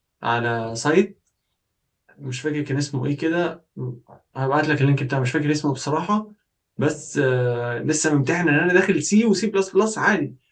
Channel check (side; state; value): both; identical; correlation 1.00